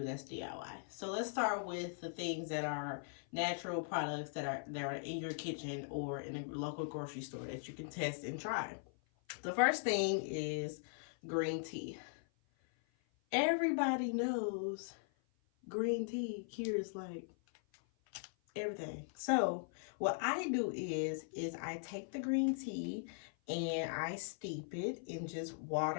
that's DIY. So let's start with the things that are natural products that are in your kitchen or in a local grocery store that you can test and try. The first thing is green tea. Everybody knows green tea cures like everything. So what I do is I take the green tea and I steep it in just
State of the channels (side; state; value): right; silent; 51 dB below the other